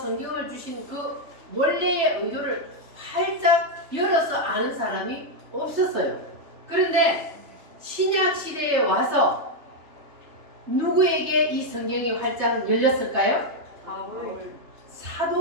주신 그 원래의 의도를 활짝 열어서 아는 사람이 없었어요. 그런데 신약 시대에 와서 누구에게 이 성경이 활짝 열렸을까요?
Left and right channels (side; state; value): left; late; 3.3 ms